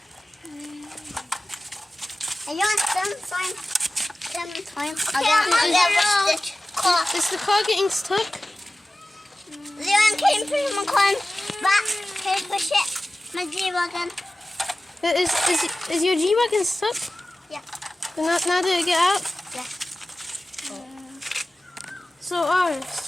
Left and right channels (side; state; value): both; normal; correlation 0.96